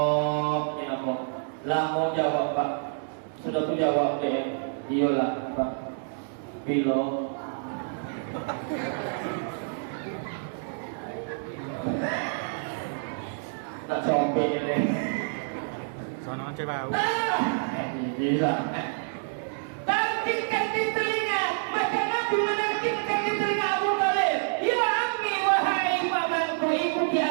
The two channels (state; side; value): silent; left; digital silence